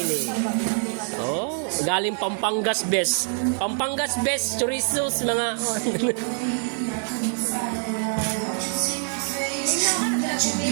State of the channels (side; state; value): left; silent; 62 dB below the other